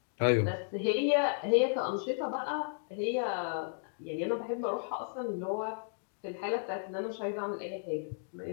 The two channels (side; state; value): right; silent; digital silence